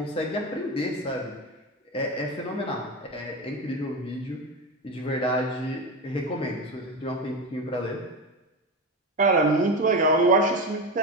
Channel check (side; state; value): both; normal; correlation 0.20